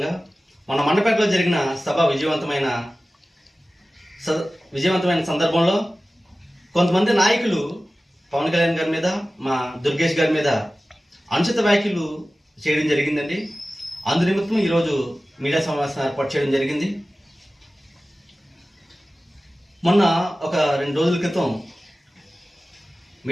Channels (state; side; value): normal; both; correlation 0.96